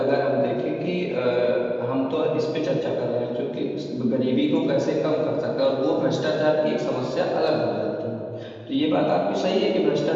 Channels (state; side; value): identical; both; correlation 1.00